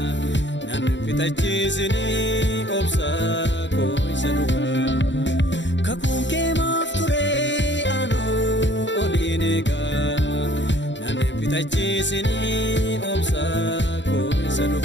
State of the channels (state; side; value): late; right; 0.53 ms